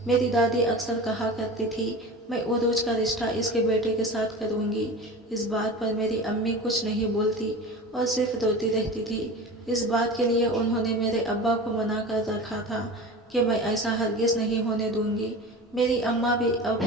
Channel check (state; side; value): normal; both; correlation 0.33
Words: میری دادی اکثر کہا کرتی تھی میں عروج کا رشتہ اس کے بیٹے کے ساتھ کروں گی۔ اس بات پر میری امی کچھ نہیں بولتی اور صرف روتی رہتی تھی۔ اس بات کے لیے انہوں نے میرے ابا کو منع کر رکھا تھا کہ میں ایسا ہرگز نہیں ہونے دوں گی۔ میری اماں بھی اب